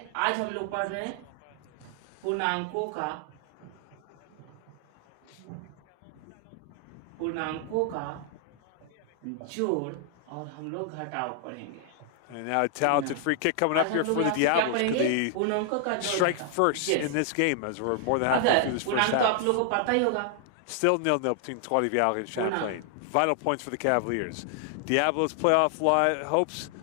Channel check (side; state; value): both; different; correlation 0.00